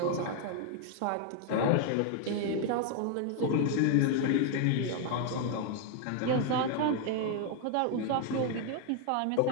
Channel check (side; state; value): both; different; correlation 0.00